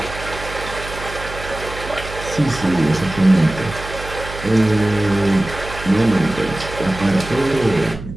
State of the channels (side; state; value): right; noise; hum, 12 dB below the sound